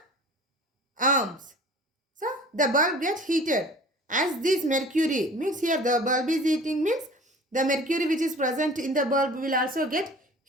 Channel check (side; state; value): both; normal; correlation 0.44